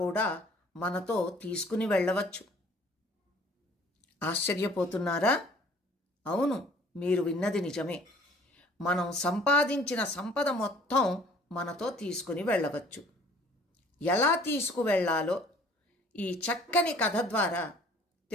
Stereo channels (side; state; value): both; normal; correlation 0.53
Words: మనతో తీసుకుని వెళ్ళవచ్చు. ఆశ్చర్యపోతున్నారా? అవును, మీరు విన్నది నిజమే. మనం సంపాదించిన సంపద మొత్తం మనతో తీసుకుని వెళ్ళవచ్చు. ఎలా తీసుకువెళ్ళాలో ఈ చక్కని కథ ద్వారా